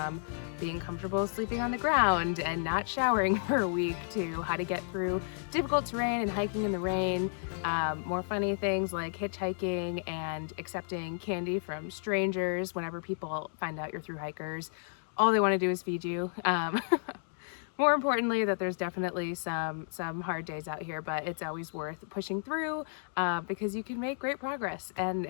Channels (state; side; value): silent; right; digital silence